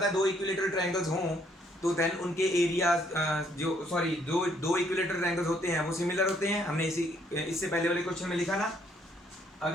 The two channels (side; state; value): both; normal; correlation 0.68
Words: है 2 इक्विलेटरल ट्रायंगल्स हों तो देन उनके एरियाज जो दो इक्विलेटरल ट्रायंगल्स होते हैं वो सिमिलर होते हैं। हमने इससे पहले वाले क्वेश्चन में लिखा ना,